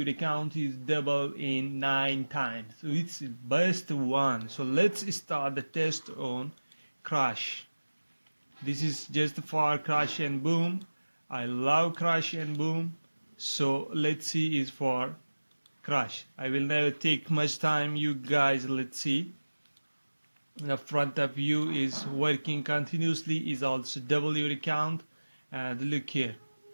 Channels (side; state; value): both; inverted; correlation -1.00